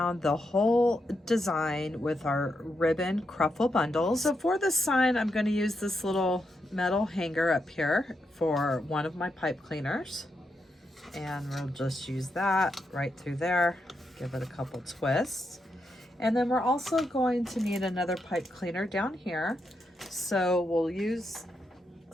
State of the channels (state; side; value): normal; both; correlation 0.84